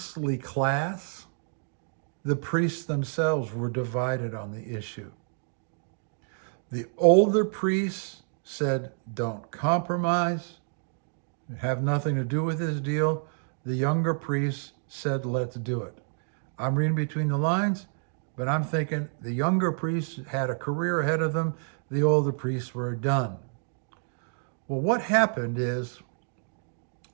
class, the priests themselves were divided on the issue. The older priests said, don't compromise, have nothing to do with this deal. The younger priests said, let's do it. I'm reading between the lines, but I'm thinking the younger priests had a career ahead of them. The older priests were done. Well, what happened is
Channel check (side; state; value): left; silent; 59 dB below the other